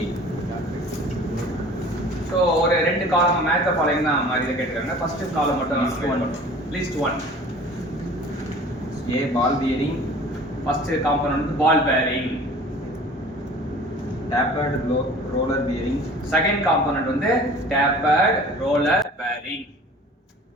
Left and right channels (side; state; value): both; normal; correlation 0.45